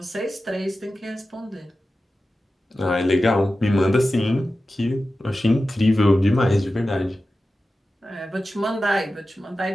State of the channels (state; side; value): normal; both; correlation 0.94